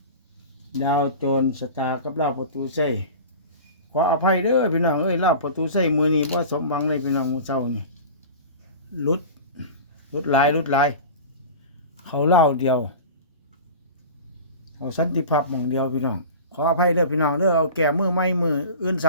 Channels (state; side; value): inverted; both; correlation -0.35